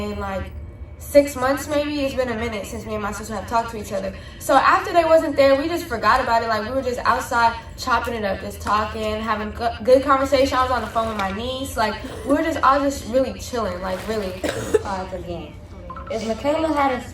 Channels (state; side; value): identical; both; correlation 1.00